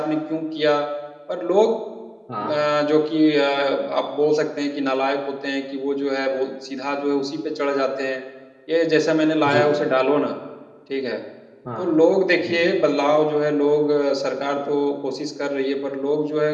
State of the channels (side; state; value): both; identical; correlation 1.00